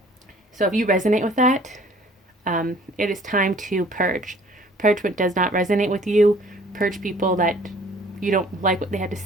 So if you resonate with that, it is time to purge. Purge what does not resonate with you. Purge people that you don't like what they have to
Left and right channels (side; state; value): both; normal; correlation 0.54